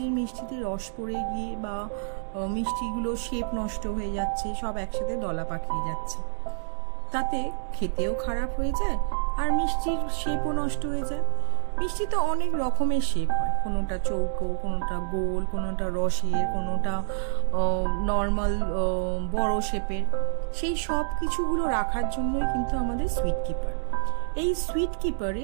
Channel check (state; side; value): silent; left; digital silence